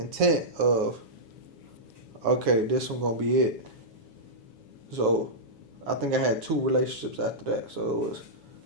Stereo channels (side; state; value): left; late; 7.2 ms